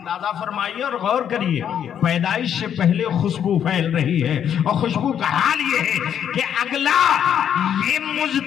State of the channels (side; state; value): right; quieter; 9.0 dB